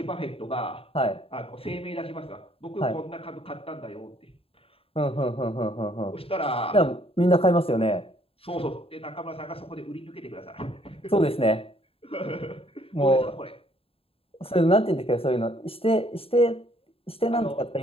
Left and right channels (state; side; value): late; right; 0.27 ms